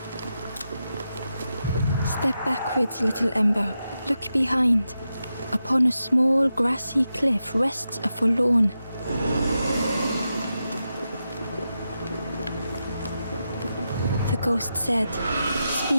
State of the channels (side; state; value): both; inverted; correlation -0.89